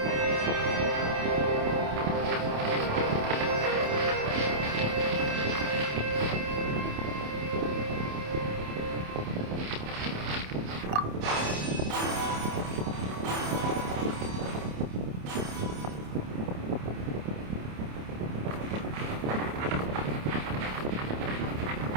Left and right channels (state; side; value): late; left; 27 ms